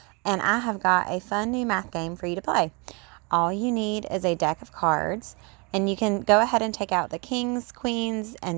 and I have got a fun new math game for you to play. All you need is a deck of cards, and you can go ahead and take out the kings, queens,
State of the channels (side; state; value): left; quieter; 30.8 dB